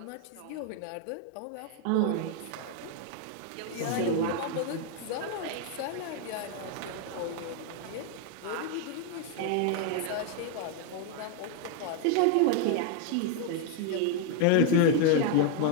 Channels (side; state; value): both; different; correlation 0.01